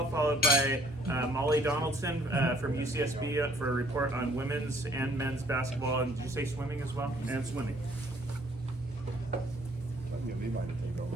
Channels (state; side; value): normal; both; correlation 0.61